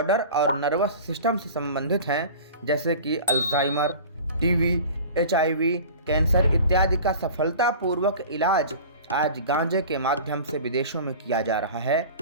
और नर्वस सिस्टम से संबंधित हैं, जैसे कि अल्जाइमर, टीबी, HIV, कैंसर इत्यादि का सफलतापूर्वक इलाज आज गांजे के माध्यम से विदेशों में किया जा रहा है।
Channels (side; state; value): both; inverted; correlation -0.39